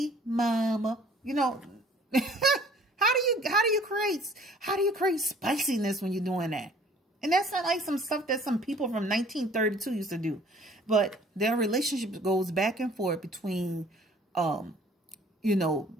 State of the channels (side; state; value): both; normal; correlation 0.54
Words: mama. You know, how do you create spiciness when you're doing that? And that's not like some stuff that some people from 1932 used to do. But their relationship goes back and forth between,